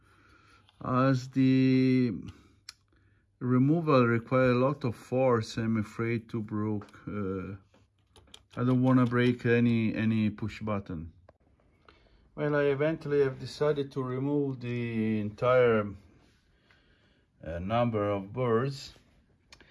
as the removal requires a lot of force. I'm afraid to break. I don't want to break any push button. Well, I eventually have decided to remove the entire number of boards,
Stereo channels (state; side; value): identical; both; correlation 1.00